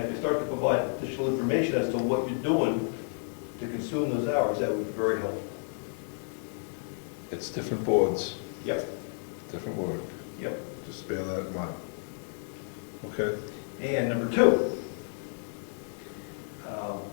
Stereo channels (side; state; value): right; silent; 57 dB below the other